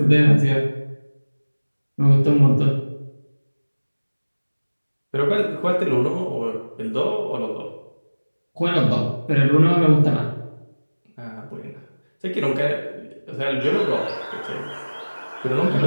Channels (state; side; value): inverted; both; correlation -1.00